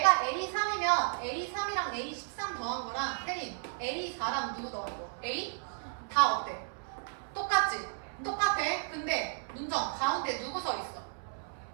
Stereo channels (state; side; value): silent; left; 55 dB below the other